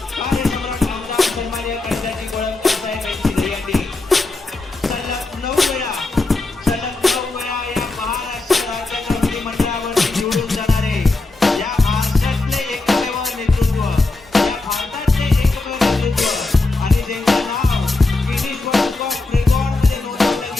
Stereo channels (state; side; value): quieter; right; 3.3 dB